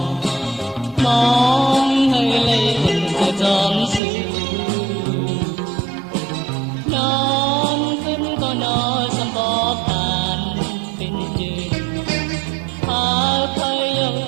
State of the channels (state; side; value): drops out; left; at 4.0 s